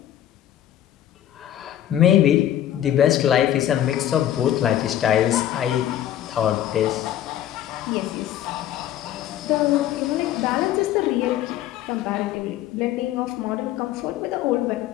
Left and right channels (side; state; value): right; quieter; 11.9 dB